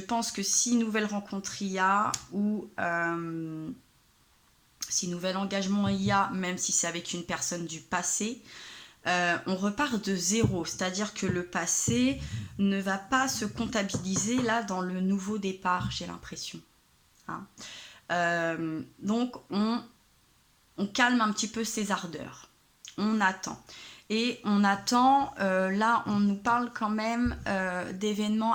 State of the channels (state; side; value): identical; both; correlation 1.00